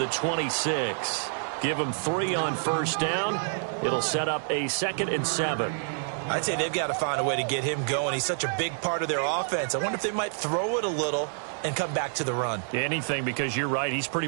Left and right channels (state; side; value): silent; left; 59 dB below the other